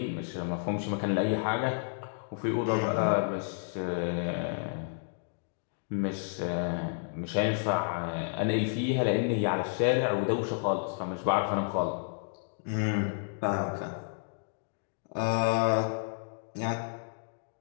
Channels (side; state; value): right; silent; digital silence